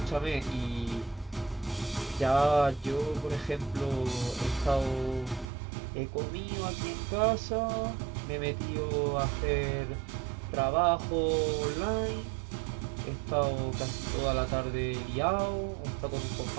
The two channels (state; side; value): drops out; left; at 5.5 s